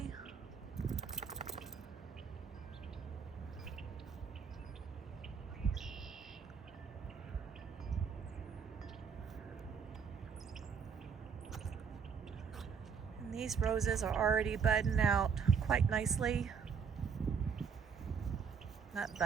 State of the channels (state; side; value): quieter; left; 6.4 dB